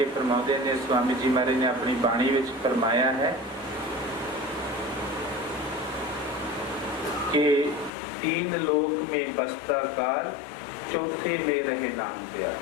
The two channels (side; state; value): right; drops out; at 7.9 s